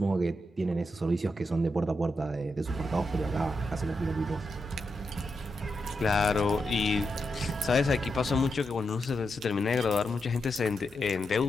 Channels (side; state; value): both; normal; correlation 0.85